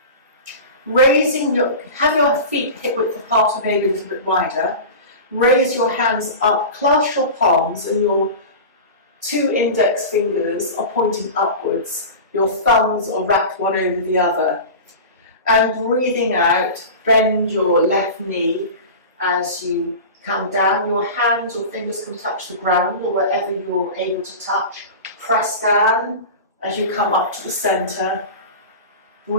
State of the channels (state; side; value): inverted; both; correlation -0.30